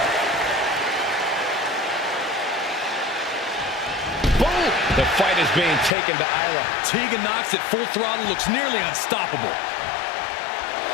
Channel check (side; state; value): right; drops out; at 6.0 s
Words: Boom! The fight is being taken to Isla. Tegan Knox at full throttle looks nearly unstoppable.